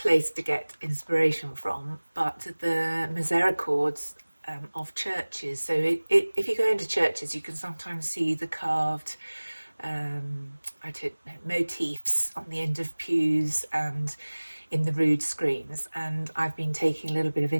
place to get inspiration from, but the misericords of churches. So if you go into churches, you can sometimes see the carved motifs on the end of pews and in the rood screens, and I've been taking a little bit of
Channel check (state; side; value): inverted; both; correlation -1.00